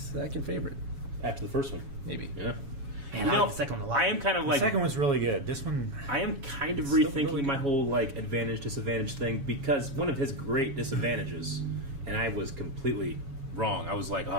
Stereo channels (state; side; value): late; left; 7.2 ms